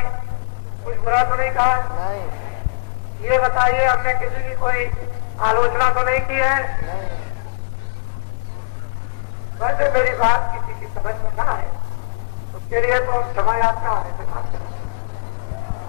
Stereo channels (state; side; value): silent; right; digital silence